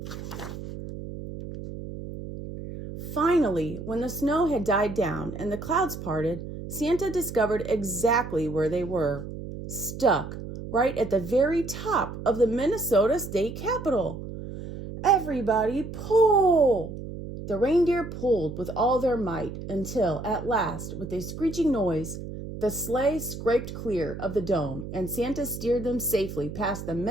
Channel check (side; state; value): right; noise; hum, 9 dB below the sound